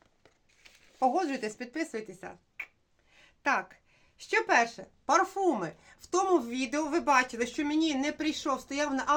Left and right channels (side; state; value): both; identical; correlation 1.00